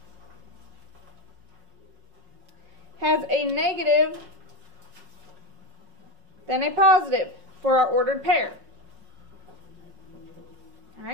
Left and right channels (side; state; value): left; late; 5.5 ms